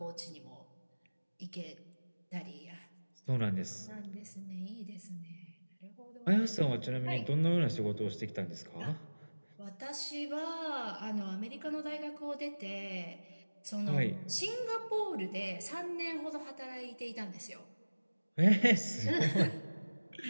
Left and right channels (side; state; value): both; inverted; correlation -1.00